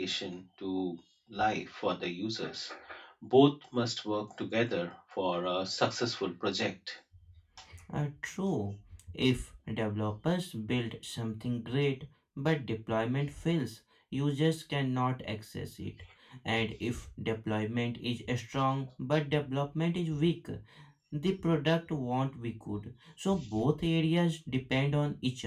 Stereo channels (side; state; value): both; identical; correlation 1.00